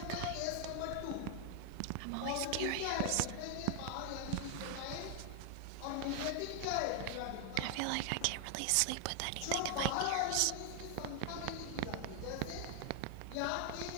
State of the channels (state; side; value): different; both; correlation 0.00